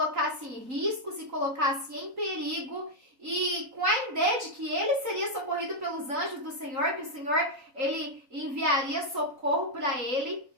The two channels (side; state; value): left; late; 3.8 ms